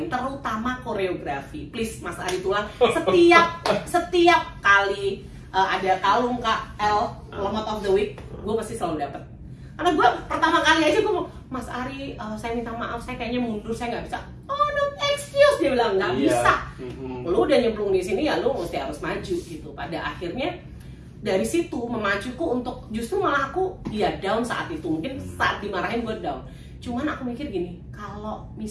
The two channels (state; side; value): identical; both; correlation 1.00